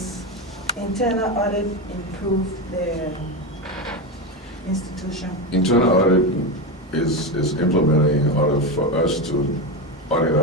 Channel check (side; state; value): both; normal; correlation 0.15